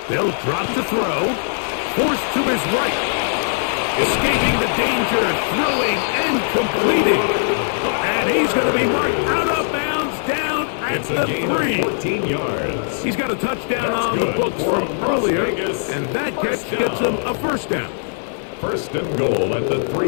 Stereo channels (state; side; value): silent; right; 66 dB below the other